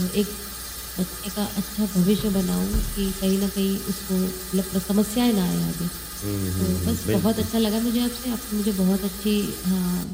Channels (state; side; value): identical; both; correlation 1.00